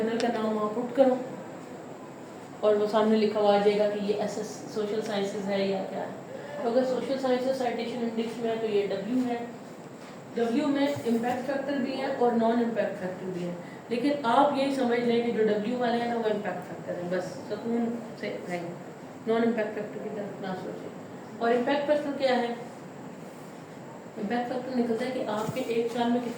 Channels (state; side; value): identical; both; correlation 1.00